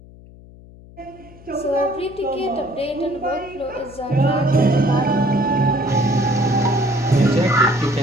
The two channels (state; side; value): noise; left; hum, 21 dB below the sound